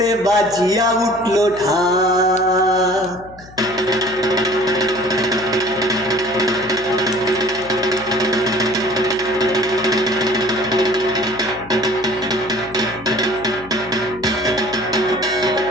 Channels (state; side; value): noise; left; hum, 21 dB below the sound